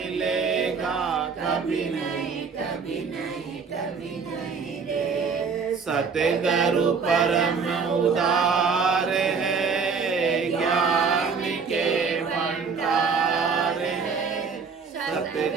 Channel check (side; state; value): left; quieter; 5.4 dB